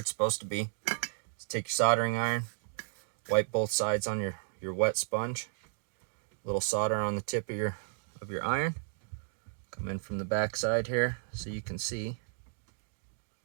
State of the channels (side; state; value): left; silent; digital silence